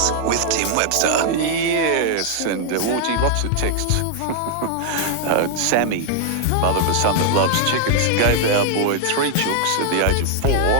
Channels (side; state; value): both; different; correlation 0.00